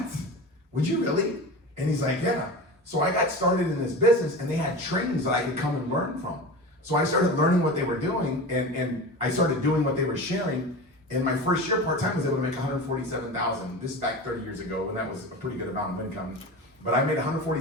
Would you really? And he's like, yeah. So I got started in this business, and they had trainings that I could come and learn from. So I started learning what they were doing, and I started doing what they were sharing. And my first year part-time I was able to make $147,000. This is back 30 years ago, and that was a pretty good amount of income. But I made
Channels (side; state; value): both; normal; correlation 0.30